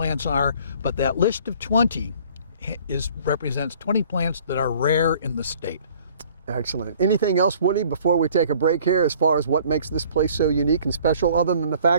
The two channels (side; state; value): both; inverted; correlation -0.54